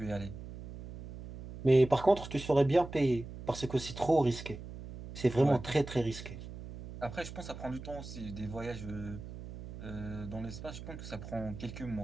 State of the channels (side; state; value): right; noise; hum, 12 dB below the sound